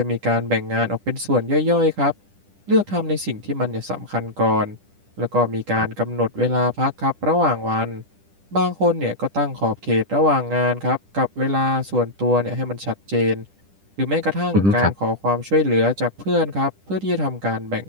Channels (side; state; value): left; late; 10 ms